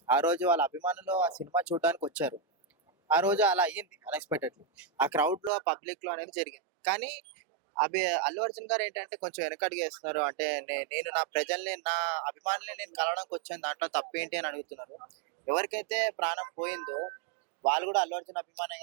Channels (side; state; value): left; drops out; at 5.5 s